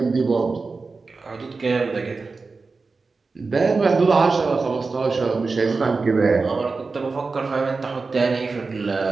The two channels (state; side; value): quieter; left; 4.2 dB